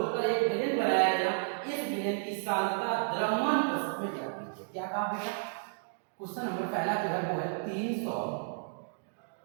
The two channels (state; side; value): silent; left; digital silence